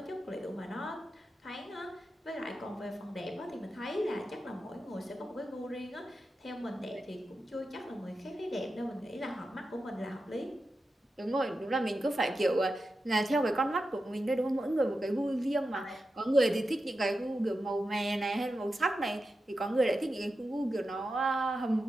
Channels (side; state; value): both; normal; correlation 0.90